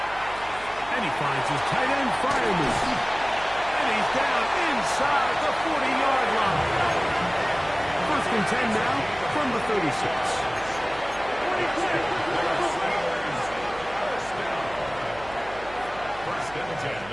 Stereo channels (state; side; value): noise; right; hum, 18 dB below the sound